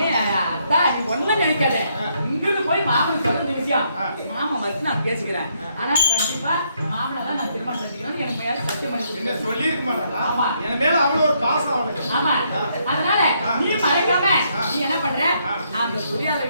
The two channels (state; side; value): inverted; both; correlation -0.74